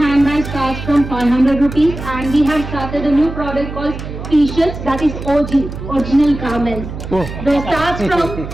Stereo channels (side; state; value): right; noise; hum, 9 dB below the sound